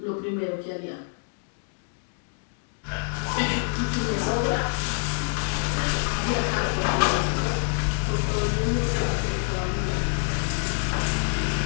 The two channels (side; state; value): right; silent; digital silence